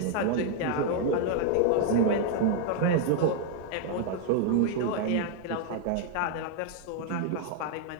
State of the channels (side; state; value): both; different; correlation 0.00